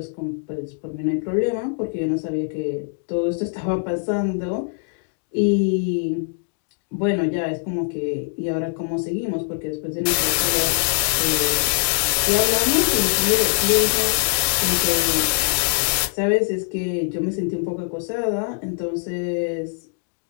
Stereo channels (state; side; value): silent; right; digital silence